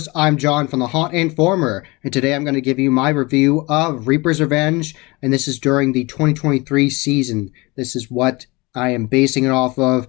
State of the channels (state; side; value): quieter; right; 24.4 dB